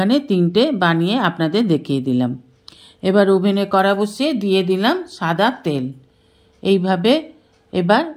3টে বানিয়ে আপনাদের দেখিয়ে দিলাম। এবার ওভেনে কড়া বসিয়ে দিয়ে দিলাম সাদা তেল। এইভাবে এবার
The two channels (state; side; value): identical; both; correlation 1.00